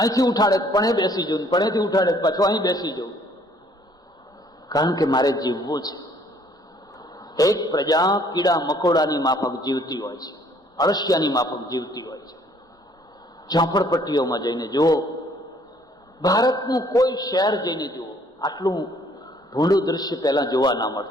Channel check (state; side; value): normal; both; correlation 0.61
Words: ઉઠાડે પણ બેસી જવું, પણેથી ઉઠાડે પાછું અહીં બેસી જવું, કારણ કે મારે જીવવું છે. એક પ્રજા કીડા મકોડાની માફક જીવતી હોય છે, અળસિયાની માફક જીવતી હોય છે. ઝોપડપટ્ટીઓમાં જઈને જુઓ, ભારતનું કોઈ શહેર જઈને જુઓ, આટલું ભૂંડું દૃશ્ય પહેલા જોવા ના